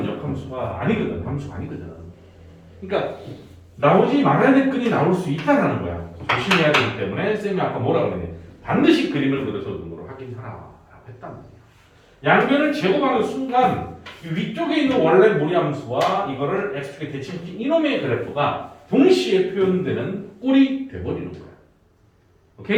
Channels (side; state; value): both; identical; correlation 1.00